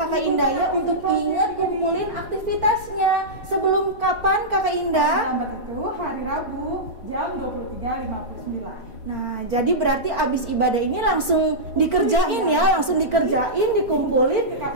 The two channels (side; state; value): left; late; 4.4 ms